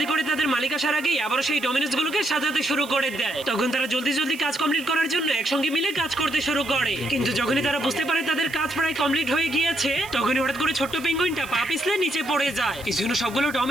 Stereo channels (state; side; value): noise; right; hiss, 18 dB below the sound